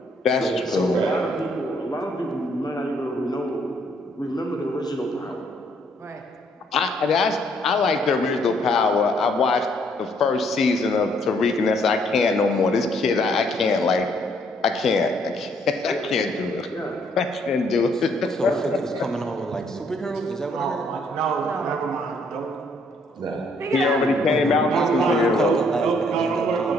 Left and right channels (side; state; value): both; normal; correlation 0.67